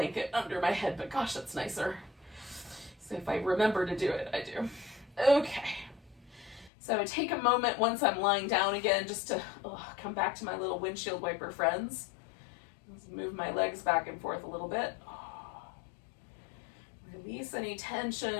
under my head, but gosh, that's nicer. So if I remember to do it, I do. Okay. So I take a moment once I'm lying down again just to come back to my little windshield wiper friends. Just move my legs back and forth a little bit. Release any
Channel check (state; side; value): drops out; right; at 6.7 s